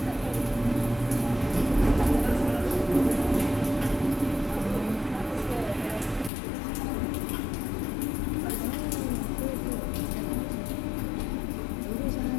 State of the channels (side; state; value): right; drops out; at 6.3 s